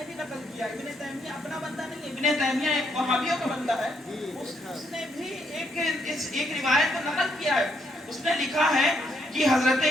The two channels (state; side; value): normal; both; correlation 0.75